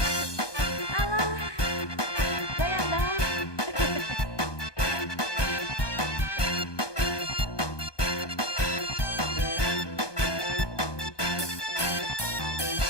Alah, goyang dong.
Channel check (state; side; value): late; right; 1.2 ms